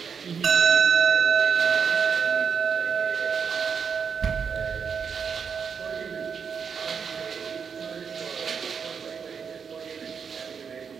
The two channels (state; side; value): quieter; left; 6.5 dB